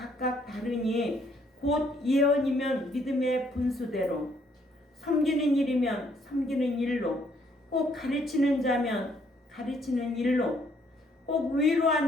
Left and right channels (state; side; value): normal; both; correlation 0.68